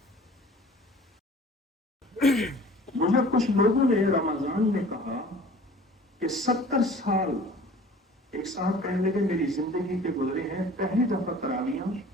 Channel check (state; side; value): normal; both; correlation 0.47